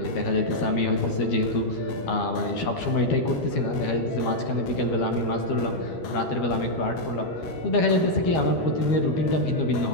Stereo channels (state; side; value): late; right; 12 ms